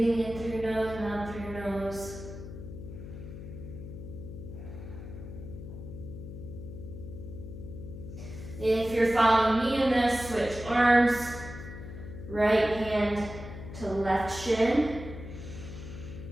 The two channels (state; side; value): noise; left; hum, 11 dB below the sound